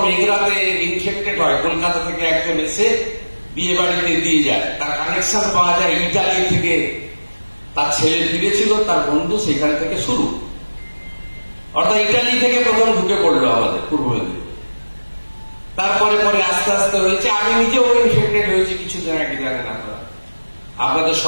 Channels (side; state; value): both; inverted; correlation -1.00